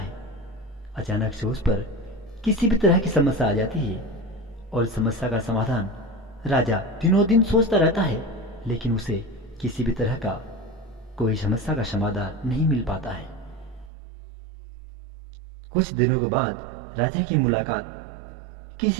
अचानक से उस पर किसी भी तरह की समस्या आ जाती है और इस समस्या का समाधान राजा दिनों दिन सोचता रहता है, लेकिन उसे किसी भी तरह का कोई समस्या का समाधान नहीं मिल पाता है। कुछ दिनों के बाद राजा की मुलाकात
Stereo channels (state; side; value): drops out; left; at 13.9 s